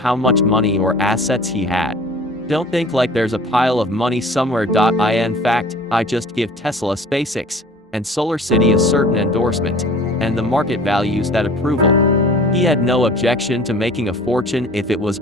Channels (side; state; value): both; normal; correlation 0.46